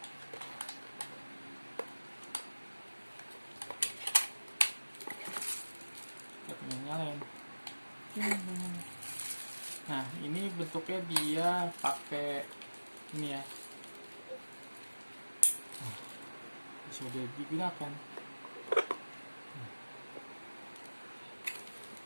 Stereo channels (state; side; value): inverted; both; correlation -1.00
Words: Kita nyalain. Nah, ini bentuknya dia pakai ini ya. Sudah digunakan.